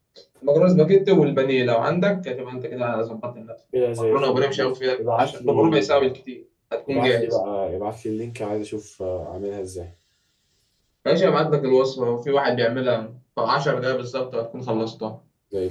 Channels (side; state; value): both; identical; correlation 1.00